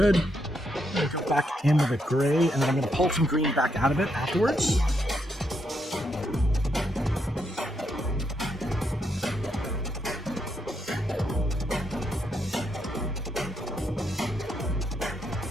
I'm going to go back in with a gray, and then I'm going to pull some green back out of it afterwards.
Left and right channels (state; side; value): normal; both; correlation 0.79